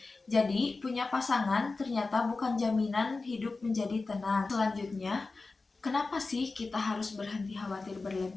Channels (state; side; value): quieter; right; 3.8 dB